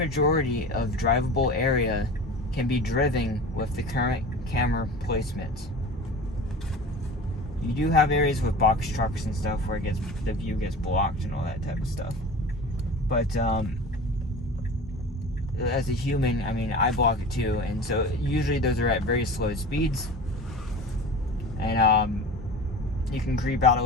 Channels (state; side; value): normal; both; correlation 0.36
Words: of drivable area can be driven with the current camera placement. You do have areas with box trucks and stuff where the view gets blocked and all that type of stuff. But as a human, I mean, I block it too, and so usually those are at very slow speeds, and you can creep out a